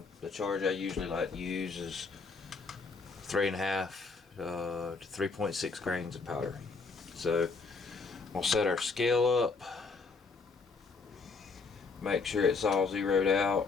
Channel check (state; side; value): quieter; right; 4.4 dB